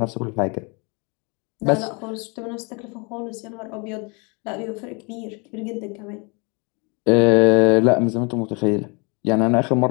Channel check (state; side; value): quieter; right; 31.4 dB